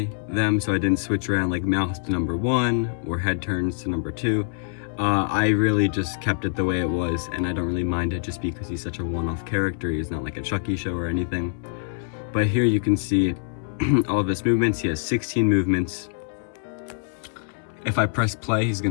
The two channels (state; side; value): silent; right; digital silence